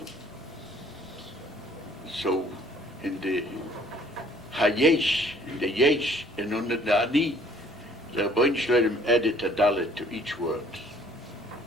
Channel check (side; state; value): both; normal; correlation 0.57